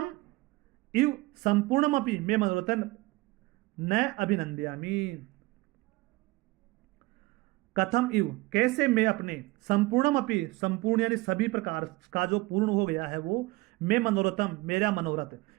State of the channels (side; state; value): left; quieter; 21.5 dB